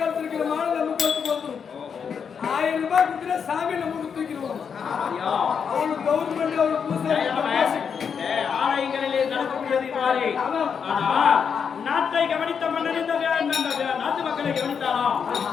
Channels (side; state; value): right; quieter; 6.7 dB